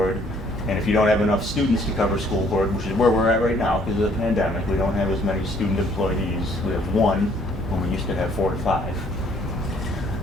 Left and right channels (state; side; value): normal; both; correlation 0.62